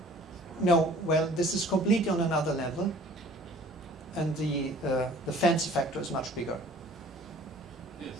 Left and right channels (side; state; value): both; normal; correlation 0.51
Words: no, well, this is completely on another level, and the fancy factor is much bigger. Yes.